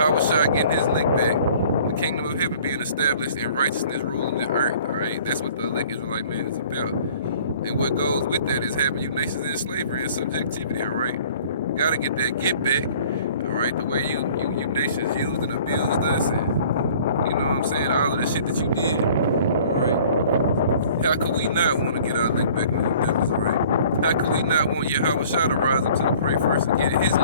Shah getting his lick back, the kingdom of heaven being established, and righteousness ruling the earth, alright. That's what the elect Israelite man is about. And what goes with that is having you nations in slavery and subjectivity, alright. You gotta get that get back, alright. The way you nations used and abused us, and you know what I'm saying, all of the shit that you did, alright. How could we not want to get our lick back on you devils, alright? How could we not want Yahweh Shah to rise up to the prey first and get his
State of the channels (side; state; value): both; inverted; correlation -0.51